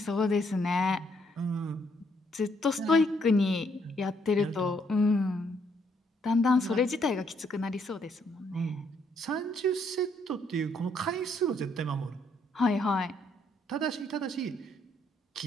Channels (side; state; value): both; normal; correlation 0.71